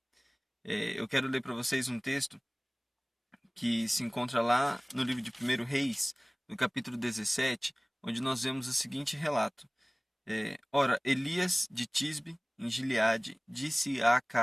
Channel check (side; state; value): both; identical; correlation 1.00